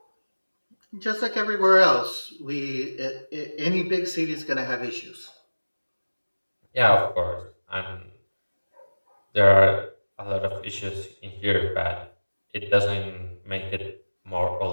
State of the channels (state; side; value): inverted; both; correlation -1.00